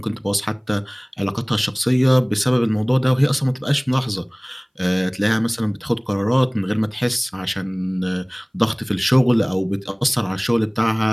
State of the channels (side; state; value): both; identical; correlation 1.00